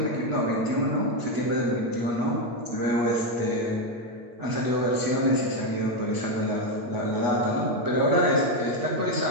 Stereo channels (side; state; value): left; late; 8.2 ms